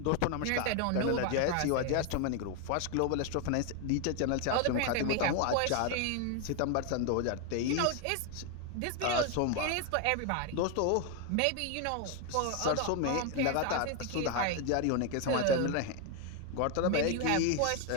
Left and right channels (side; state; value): both; different; correlation 0.01